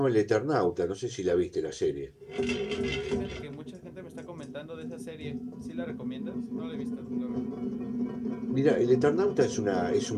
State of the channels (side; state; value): both; identical; correlation 1.00